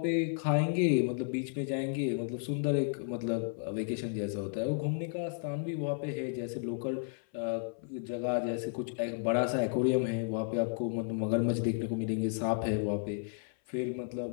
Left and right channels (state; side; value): silent; right; 56 dB below the other